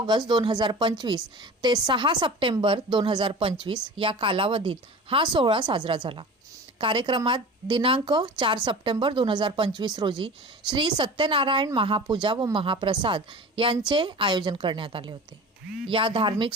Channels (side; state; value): both; normal; correlation 0.36